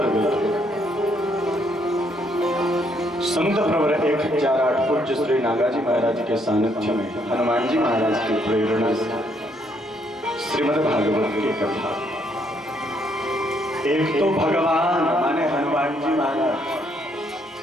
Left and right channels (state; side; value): normal; both; correlation 0.71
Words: संत प्रवर 1008 पूज्य श्री नागाजी महाराज के सानिध्य में हनुमान जी महाराज की प्रेरणा से श्रीमद् भागवत की कथा। एक तो भगवान माने हनुमान जी महाराज